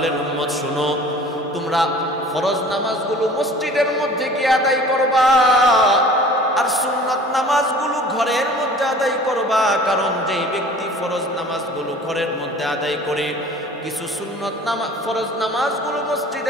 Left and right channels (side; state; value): both; normal; correlation 0.46